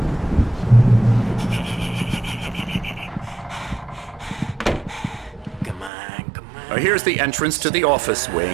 Here's the entrance to the office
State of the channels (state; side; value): drops out; left; at 5.9 s